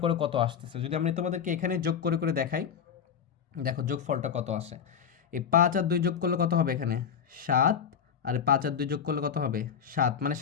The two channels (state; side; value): quieter; right; 7.6 dB